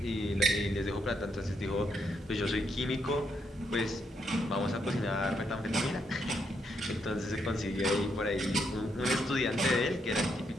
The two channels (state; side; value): normal; both; correlation 0.77